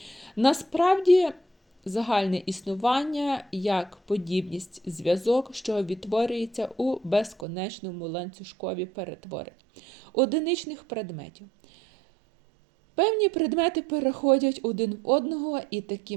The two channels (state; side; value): drops out; left; at 7.5 s